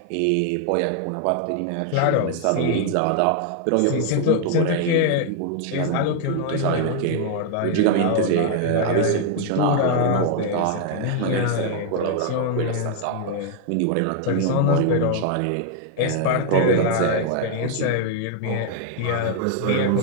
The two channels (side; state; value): both; different; correlation 0.00